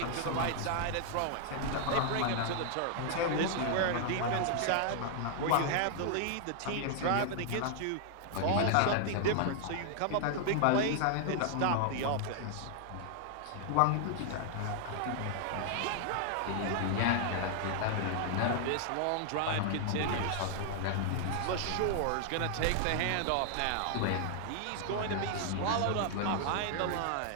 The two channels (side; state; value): both; different; correlation 0.00